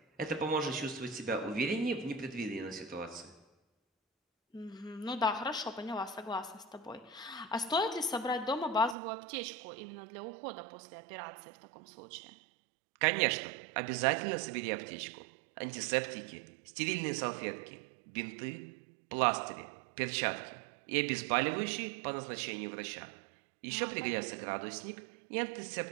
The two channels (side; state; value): left; drops out; at 9.0 s